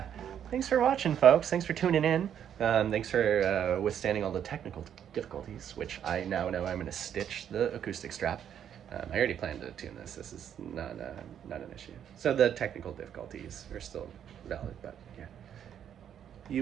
thanks for watching, folks. Thanks for tuning in. Thanks for withstanding all the technical difficulties, which I now know I'm going to stitch the acoustic strap. I already planned to tune this. This is not an issue. So the technical difficulties are still valid, but yeah.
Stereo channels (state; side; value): quieter; left; 9.3 dB